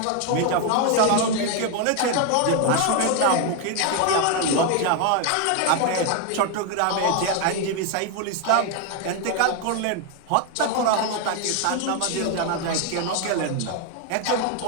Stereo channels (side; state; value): both; different; correlation 0.01